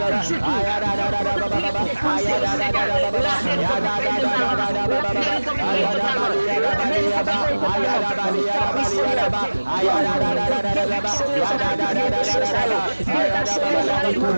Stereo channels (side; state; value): both; inverted; correlation -1.00